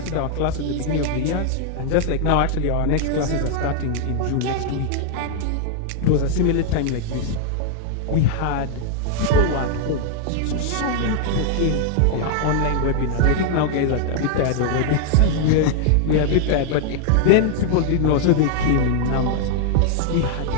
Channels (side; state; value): both; different; correlation 0.00